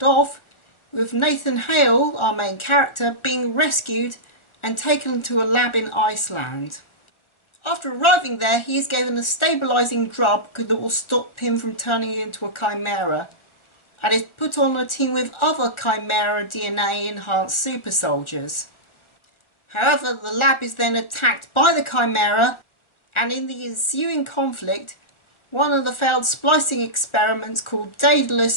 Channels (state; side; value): late; right; 1.4 ms